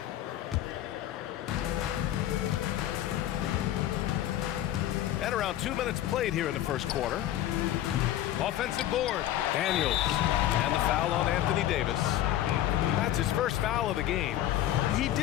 And around 2 minutes played here in the first quarter. Offensive board. Daniels. And the foul on Anthony Davis. That's his first foul of the game. He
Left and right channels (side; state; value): right; quieter; 12.8 dB